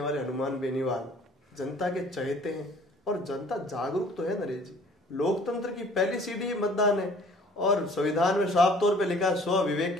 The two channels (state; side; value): normal; both; correlation 0.53